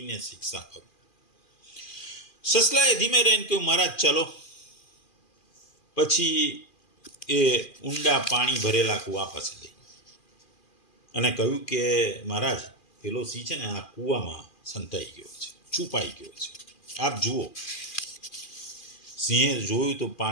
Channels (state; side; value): late; right; 2.4 ms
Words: શિક્ષા કરું. સસલાએ ધીમે રહીને કહ્યું, મહારાજ ચલો. પછી એ ઊંડા પાણી ભરેલા કૂવા પાસે ગઈ અને કહ્યું કે મહારાજ, પેલો સિંહ છે ને આ કૂવામાં સંતાઈ ગયો છે, છુપાઈ ગયો છે, આપ જુઓ. સિંહે જોયું તો